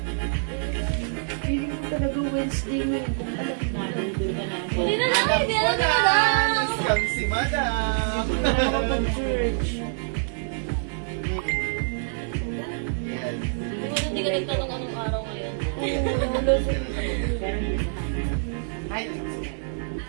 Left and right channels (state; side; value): silent; left; digital silence